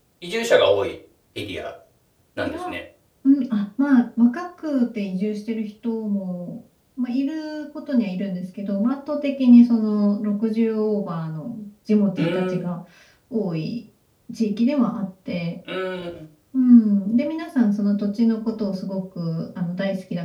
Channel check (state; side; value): identical; both; correlation 1.00